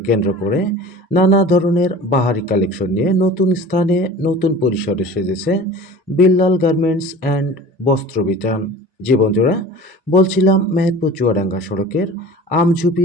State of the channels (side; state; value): both; normal; correlation 0.40